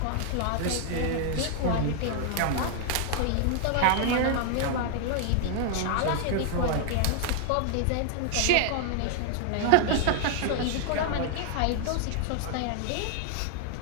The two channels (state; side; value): different; both; correlation 0.00